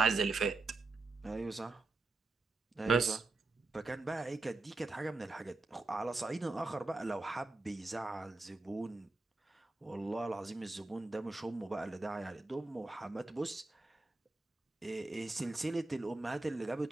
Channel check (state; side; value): quieter; left; 3.3 dB